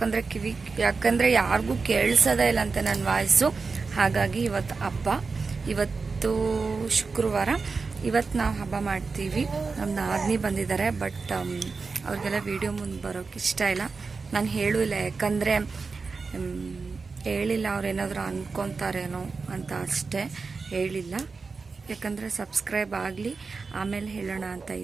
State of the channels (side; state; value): left; quieter; 4.5 dB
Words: ಯಾಕಂದರೆ ಯಾರಿಗೂ ಕೇಳಿಸೋದೇ ಇಲ್ಲ ಅಂತ ನನ್ನ ವಾಯ್ಸು. ಹಾಗಾಗಿ ಇವತ್ತು ಹಬ್ಬ, ಇವತ್ತು ಶುಕ್ರವಾರ. ಇವತ್ತು ನಾವು ಹಬ್ಬ ಮಾಡ್ತೀವಿ. ನಮ್ಮ ನಾದಿನಿ ಬಂದಿದ್ದಾರೆ, ಬಟ್ ಅವ್ರಿಗೆಲ್ಲ ವಿಡಿಯೋ ಮುಂದೆ ಬರೋಕ್ಕೆ ಇಷ್ಟ ಇಲ್ಲ. ನಾನು ಹೇಳೂ ಇಲ್ಲ, ಯಾಕಂದರೆ ಹೇಳಿಲ್ಲ ಅವ್ರೇನಾದರೂ ಅಂದ್ಕೊತಾರೇನೋ ಅಂತ ಅಷ್ಟೇ ಹೇಳಿಲ್ಲ. ಯಾಕಂದರೆ ಸಬ್ಸ್ಕ್ರೈಬ್ ಆಗಲಿ, ಆಮೇಲೆ ಹೇಳೋಣ ಅಂತ